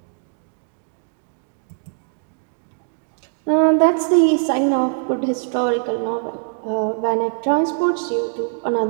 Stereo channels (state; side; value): silent; left; digital silence